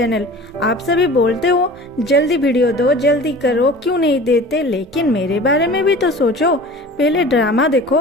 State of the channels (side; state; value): both; normal; correlation 0.40